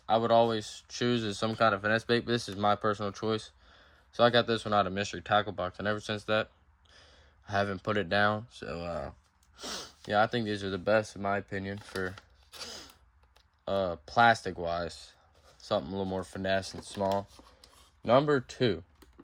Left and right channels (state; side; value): identical; both; correlation 1.00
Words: I would always choose is some kind of finesse bait. But this is my personal choice. So I got this one out of Mystery Tackle Box, and ever since that, I haven't put it down. So yeah, I think these are the best in my opinion for plastic wise. Something a little more finesse and small. Number 2,